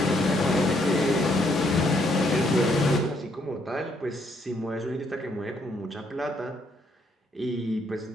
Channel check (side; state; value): both; normal; correlation 0.71